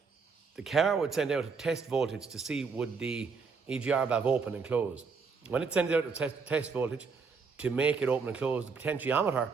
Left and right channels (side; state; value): left; quieter; 5.0 dB